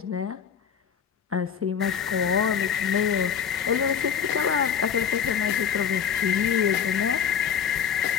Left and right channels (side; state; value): right; quieter; 7.8 dB